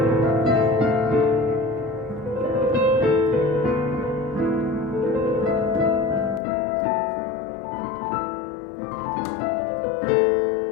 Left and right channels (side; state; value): right; drops out; at 6.4 s